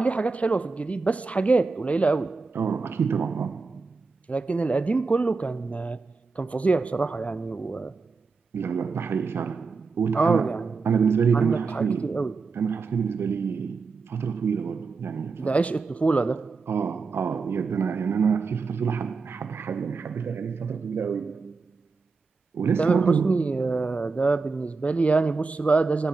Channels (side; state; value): left; quieter; 4.4 dB